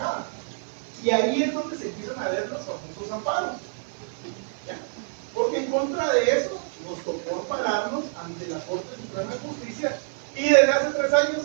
Y ahí es donde se empiezan a ver los famosos amparos. ¿Ya? Porque en contra de eso nos tocó ampararnos ante la Corte Suprema de Justicia. Y desde hace 3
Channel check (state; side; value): silent; left; 55 dB below the other